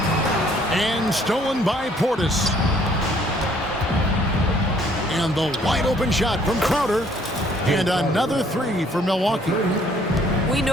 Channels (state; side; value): normal; both; correlation 0.62